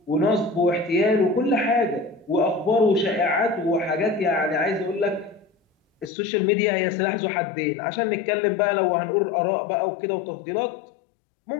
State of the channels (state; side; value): drops out; right; at 6.1 s